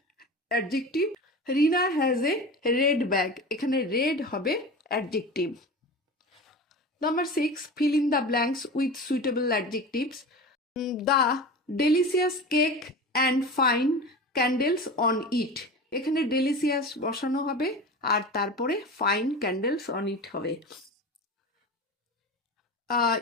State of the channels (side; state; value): both; normal; correlation 0.31